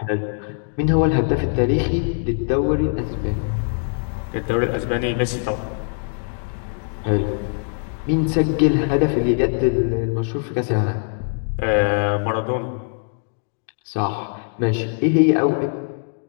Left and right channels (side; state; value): right; silent; 64 dB below the other